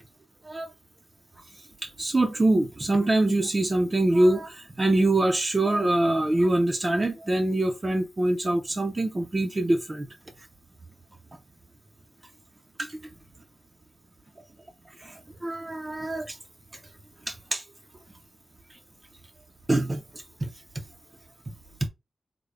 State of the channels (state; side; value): normal; both; correlation 0.96